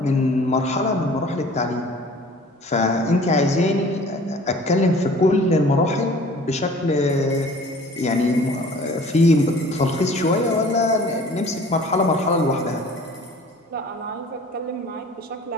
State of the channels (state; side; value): normal; both; correlation 0.48